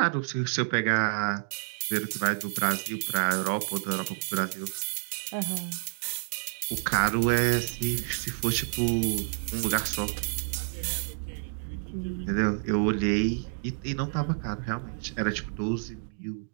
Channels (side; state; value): left; silent; digital silence